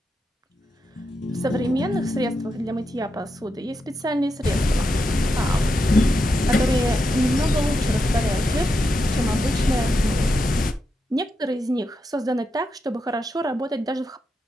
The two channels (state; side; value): normal; both; correlation 0.85